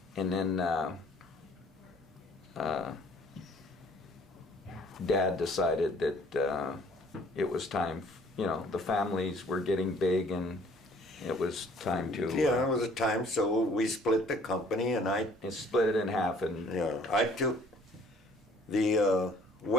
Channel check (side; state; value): both; normal; correlation 0.57